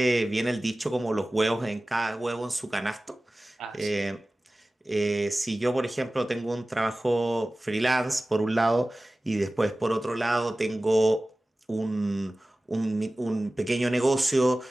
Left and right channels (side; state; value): both; normal; correlation 0.97